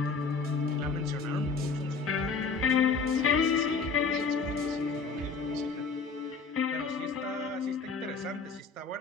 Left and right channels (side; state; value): right; quieter; 4.8 dB